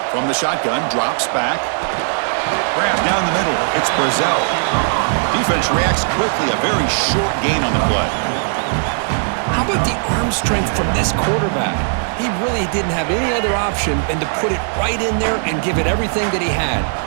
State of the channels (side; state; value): left; silent; digital silence